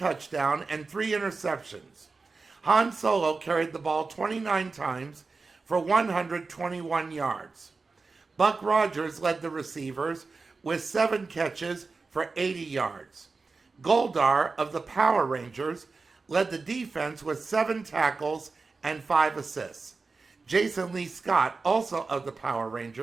and 3 interceptions. Han Solo carried the ball 29 times for 121 yards. Buck Rogers led the receivers with 7 catches for 80 yards. Goldar of the Power Rangers led the defense with 7 tackles and 5 assists. Jason Lee Scott, also of the Power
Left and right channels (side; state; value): left; quieter; 4.1 dB